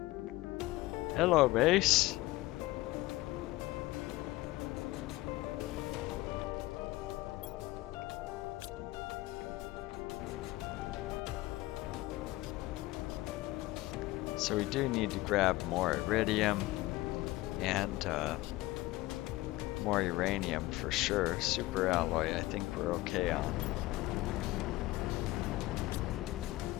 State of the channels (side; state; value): right; quieter; 18.6 dB